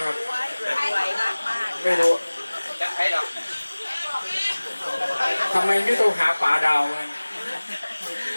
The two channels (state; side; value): inverted; both; correlation -1.00